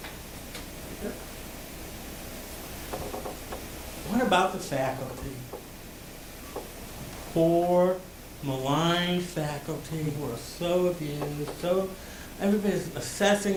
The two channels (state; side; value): identical; both; correlation 1.00